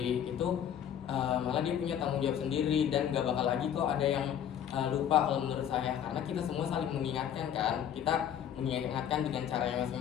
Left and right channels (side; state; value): right; quieter; 9.6 dB